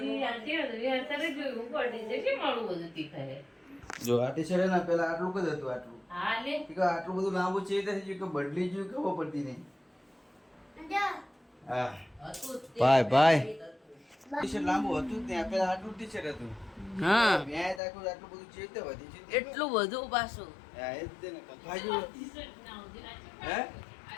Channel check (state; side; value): drops out; right; at 17.8 s